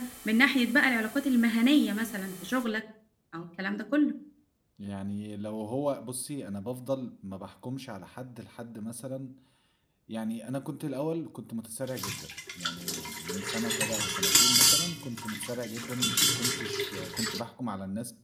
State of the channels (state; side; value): identical; both; correlation 1.00